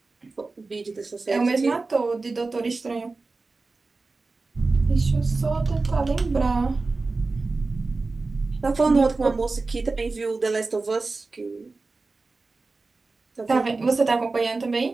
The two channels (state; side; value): quieter; left; 3.7 dB